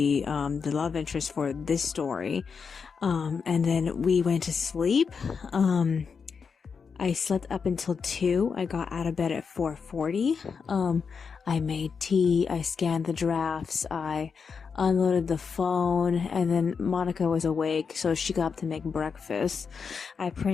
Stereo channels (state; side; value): quieter; right; 5.8 dB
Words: love interest for this story. And then we went to sleep. I slept up until 2. I got out of bed at 4:40. I made tea. I scanned the drafts. I unloaded the phone, and then Monica was awake, so she got up to make breakfast. I